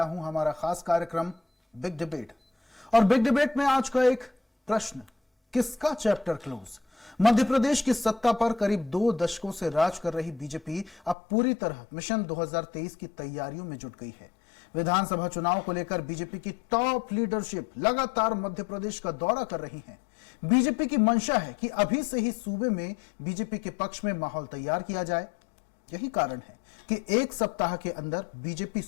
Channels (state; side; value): drops out; right; at 11.2 s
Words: हूं हमारा खास कार्यक्रम बिग डिबेट। और बिग डिबेट में आज का एक प्रश्न, किसका चैप्टर क्लोज? मध्य प्रदेश की सत्ता पर करीब 2 दशकों से राज कर रही बीजेपी अब पूरी तरह मिशन 2023 की तैयारियों में जुट गई है। विधानसभा चुनाव को लेकर बीजेपी की टॉप लीडरशिप लगातार मध्य प्रदेश का दौरा कर रही है। बीजेपी की मंशा है कि अभी से ही सूबे में बीजेपी के पक्ष में माहौल तैयार किया जाए। यही कारण है कि एक सप्ताह के अंदर बीजेपी